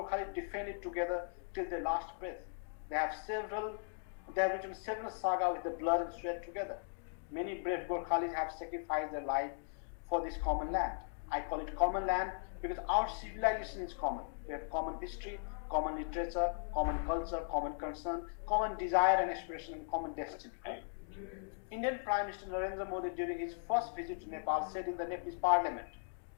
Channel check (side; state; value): right; silent; digital silence